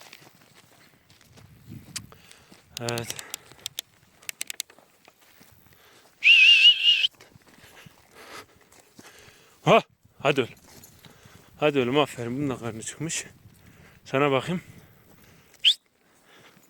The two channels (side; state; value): both; identical; correlation 1.00